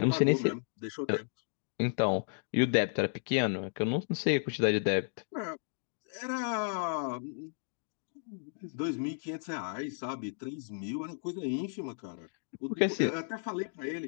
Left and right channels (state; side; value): silent; right; digital silence